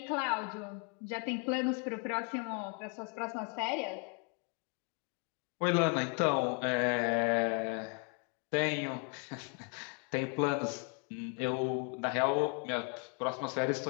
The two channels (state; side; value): quieter; right; 36.0 dB